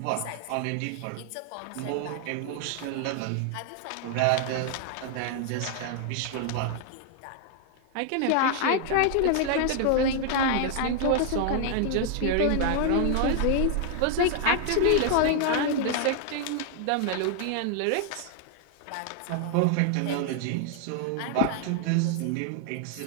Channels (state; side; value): different; both; correlation 0.00